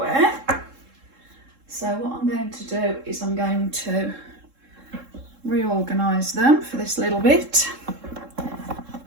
So what I'm going to do is I'm going to reorganise them for this little bit.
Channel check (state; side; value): late; left; 3.7 ms